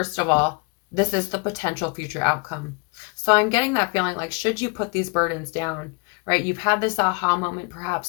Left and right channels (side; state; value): right; quieter; 32.2 dB